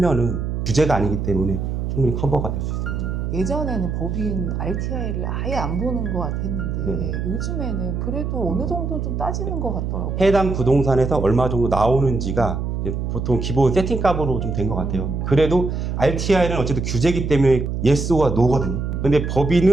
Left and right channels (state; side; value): noise; right; hum, 2 dB below the sound